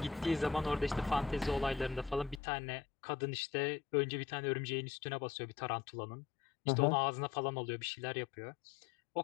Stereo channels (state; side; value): drops out; right; at 2.4 s